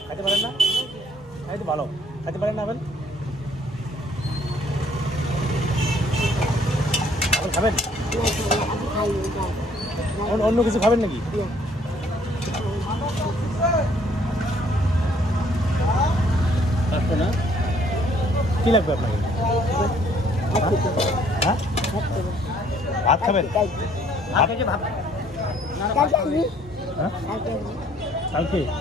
খাইতে পারেন না? খাইতে ভালো, খাইতে পারেন না আপেল? আপেল খাবেন? অন্য কিছু খাবেন নাকি? না কি লাগবে আপনাকে? হ্যাঁ ভাত খাবেন? কালকে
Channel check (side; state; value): both; normal; correlation 0.62